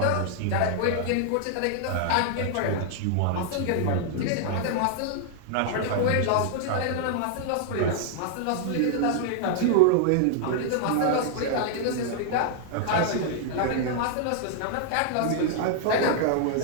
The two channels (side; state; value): both; different; correlation -0.01